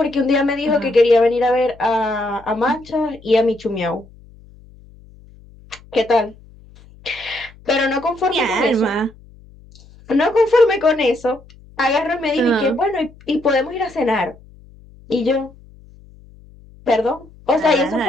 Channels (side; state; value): left; noise; hum, 24 dB below the sound